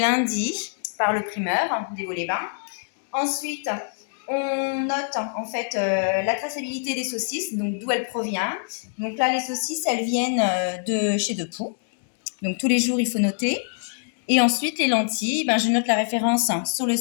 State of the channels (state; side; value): silent; right; digital silence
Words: par le primeur des Vaux-les-Bains. Ensuite, on note en fait la traçabilité des saucisses, donc d'où elles proviennent. Donc là, les saucisses, elles viennent de chez Depoux. Donc tous les jours, il faut noter. Et ensuite, les lentilles, ben, je note la référence sur le